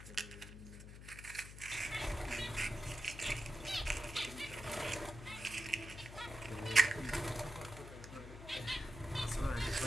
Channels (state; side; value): noise; left; hum, 12 dB below the sound